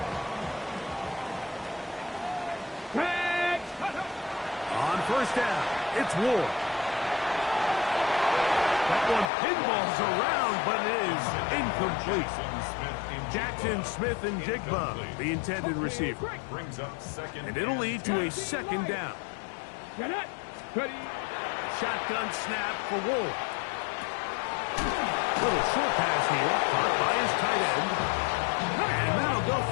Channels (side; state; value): right; drops out; at 9.3 s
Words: On first down, it's Ward. That one pinballs around, but it is incomplete. Jackson Smith and Jigba, the intended receiver. Brings up second. And it'll lead to a second down. Shotgun snap for Ward. Little short pass here, caught by his tight end. And that'll go